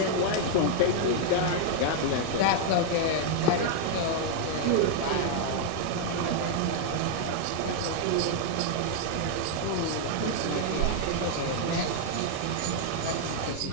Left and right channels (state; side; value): different; both; correlation 0.00